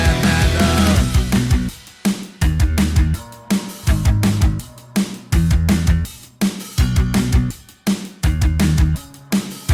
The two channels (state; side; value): identical; both; correlation 1.00